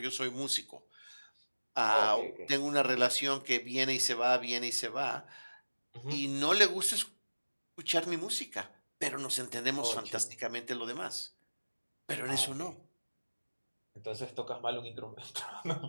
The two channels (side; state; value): both; inverted; correlation -1.00